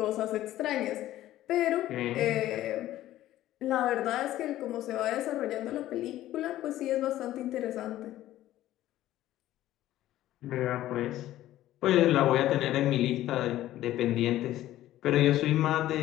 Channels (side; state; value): right; quieter; 14.1 dB